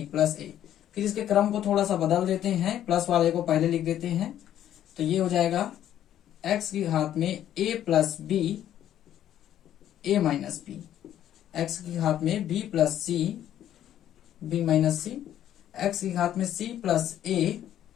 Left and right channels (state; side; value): quieter; right; 11.3 dB